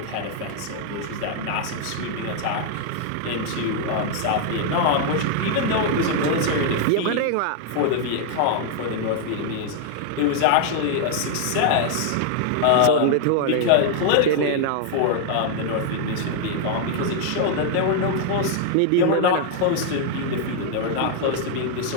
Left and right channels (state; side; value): different; both; correlation 0.00